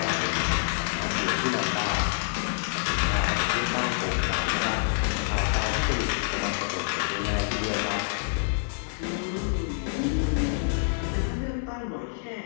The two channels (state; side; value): silent; right; digital silence